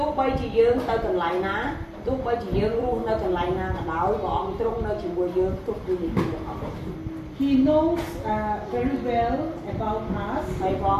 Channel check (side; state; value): both; identical; correlation 1.00